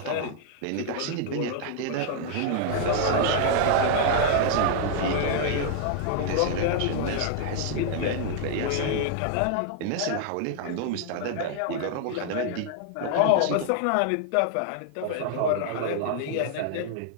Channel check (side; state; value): both; different; correlation 0.00